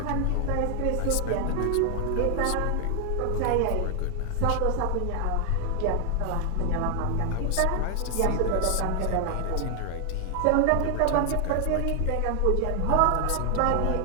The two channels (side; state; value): both; different; correlation 0.00